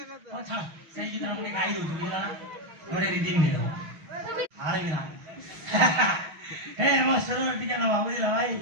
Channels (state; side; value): late; left; 6.2 ms